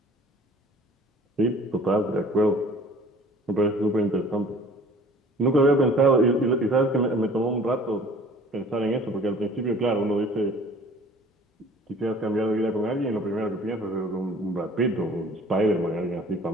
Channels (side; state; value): both; normal; correlation 0.50